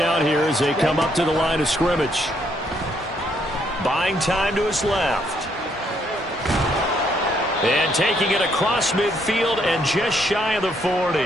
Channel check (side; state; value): both; normal; correlation 0.71